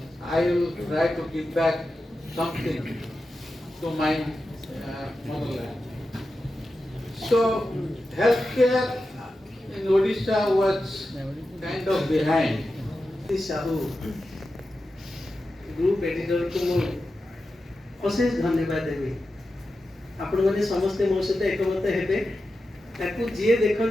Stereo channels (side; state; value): both; normal; correlation 0.91